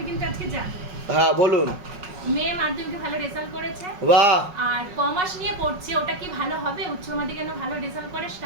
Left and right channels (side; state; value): left; late; 5.4 ms